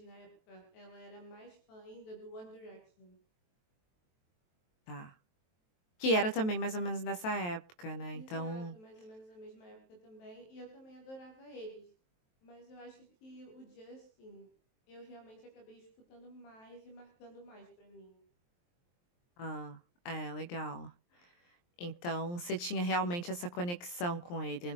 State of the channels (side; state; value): right; late; 23 ms